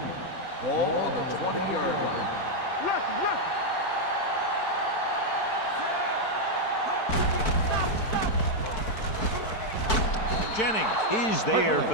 Ball on the 20-yard line. Jennings is there for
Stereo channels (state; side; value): late; right; 4.6 ms